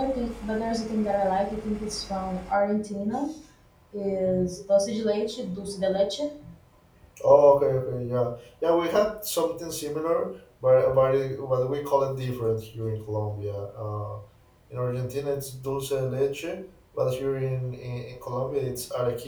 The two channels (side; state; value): both; identical; correlation 1.00